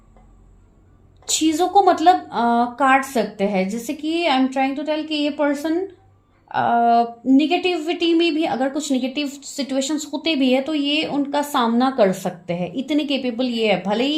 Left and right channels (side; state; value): both; identical; correlation 1.00